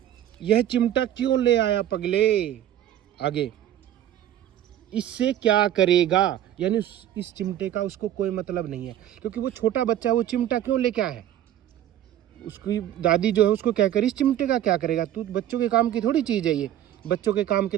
यह चिमटा क्यों ले आया पगले। आगे, इससे क्या करेगा, यानी इस चिमटे का उसको कोई मतलब नहीं है, क्योंकि वो छोटा बच्चा, वो चिमटा क्यों लेके आया है। उसकी दादी जो है उसको क्या करे, इस चिमटे का क्या करेगा, तू बच्चों के काम की थोड़ी चीज़ है ये। बच्चों के काम के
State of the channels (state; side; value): quieter; left; 11.8 dB